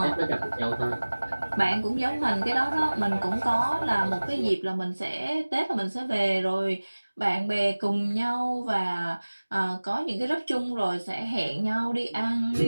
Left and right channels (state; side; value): inverted; both; correlation -1.00